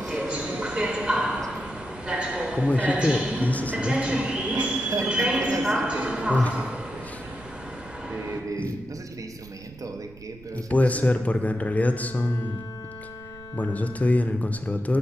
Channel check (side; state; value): right; noise; rumble, 21 dB below the sound